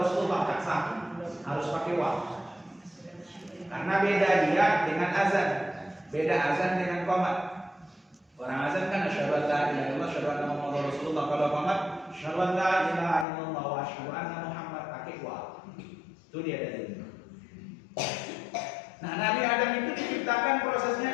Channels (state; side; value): drops out; right; at 13.2 s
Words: Rasulullah, tak sah. Harus pakai wa. Karena beda dia dengan azan. Beda azan dengan qomat. Orang azan kan asyhadu an la ilaha illallah, asyhadu anna Muhammadar Rasulullah. Kalau qomat asyhadu an la ilaha illallah wa asyhadu anna Muhammad, pakai wa. Itu dia dalilnya. Nah, Nabi Adam itu diciptakan